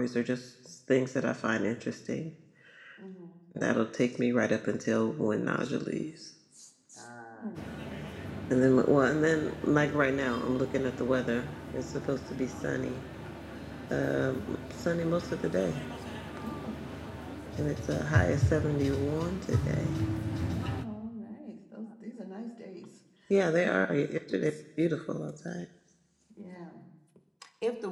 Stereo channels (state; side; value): identical; both; correlation 1.00